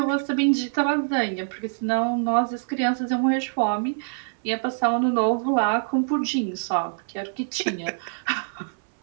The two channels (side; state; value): left; silent; 62 dB below the other